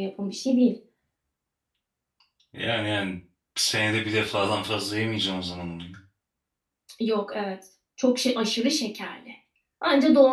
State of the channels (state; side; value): identical; both; correlation 1.00